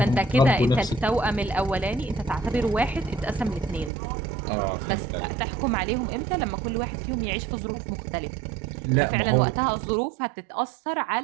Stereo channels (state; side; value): drops out; left; at 3.9 s